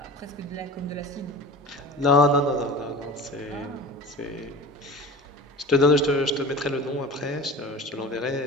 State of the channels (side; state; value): both; normal; correlation 0.35